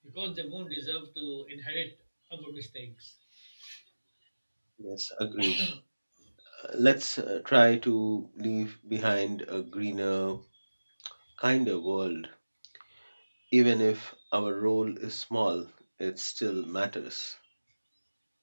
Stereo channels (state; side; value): inverted; both; correlation -1.00